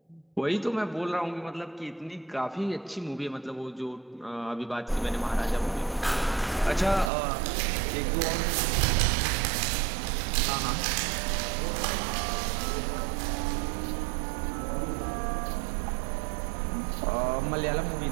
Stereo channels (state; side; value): drops out; left; at 7.1 s